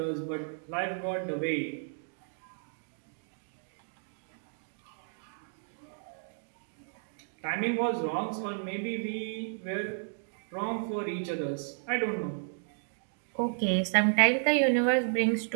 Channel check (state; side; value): silent; left; digital silence